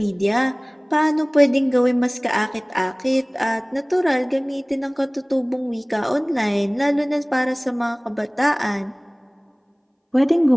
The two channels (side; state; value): both; identical; correlation 1.00